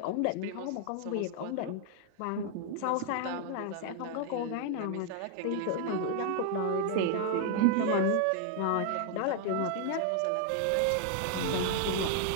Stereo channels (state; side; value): different; both; correlation 0.00